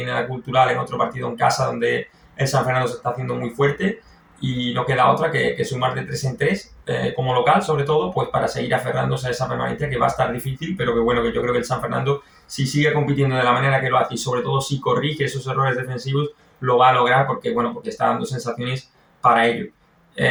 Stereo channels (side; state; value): both; identical; correlation 1.00